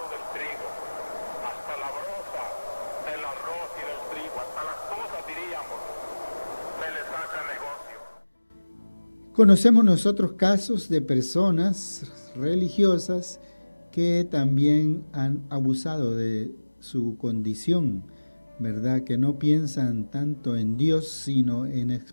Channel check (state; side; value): inverted; both; correlation -1.00